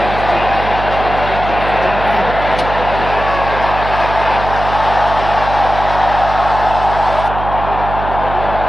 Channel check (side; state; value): right; noise; hum, 7 dB below the sound